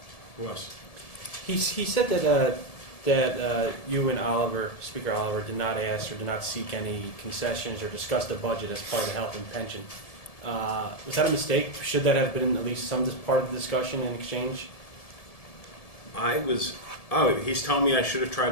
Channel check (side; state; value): right; late; 1.7 ms